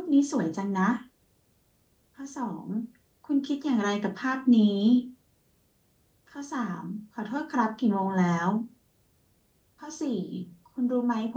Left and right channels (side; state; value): both; identical; correlation 1.00